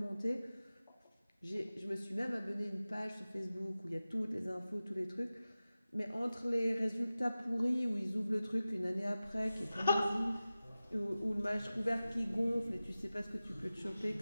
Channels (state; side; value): inverted; both; correlation -0.96